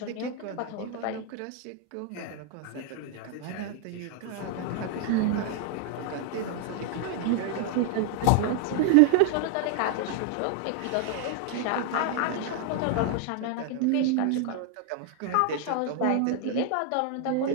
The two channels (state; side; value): different; both; correlation 0.00